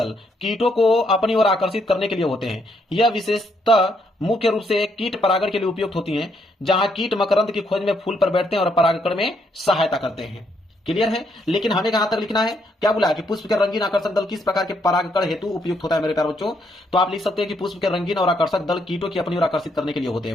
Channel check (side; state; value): both; normal; correlation 0.74